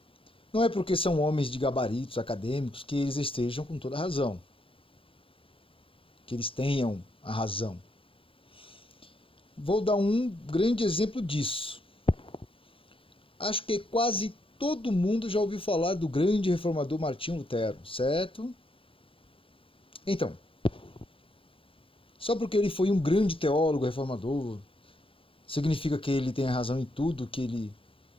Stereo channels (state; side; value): late; right; 0.26 ms